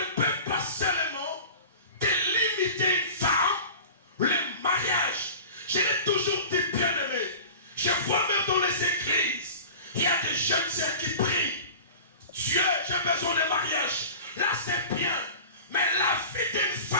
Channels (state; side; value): inverted; both; correlation -0.37